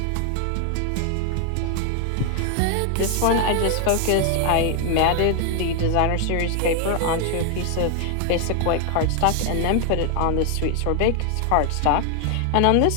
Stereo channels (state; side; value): different; both; correlation 0.00